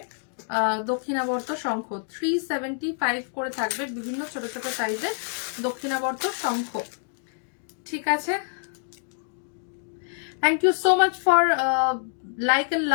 দক্ষিণাবর্ত শঙ্খ, 375 করে থাকবে বিভিন্ন ছোট ছোট সাইজের দক্ষিণাবর্ত শঙ্খ। ঠিক আছে, thank you so much for like and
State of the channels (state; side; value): silent; right; digital silence